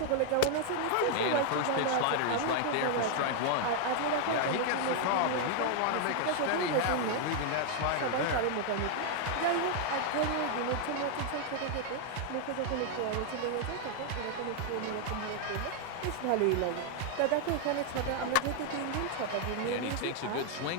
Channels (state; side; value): different; both; correlation 0.00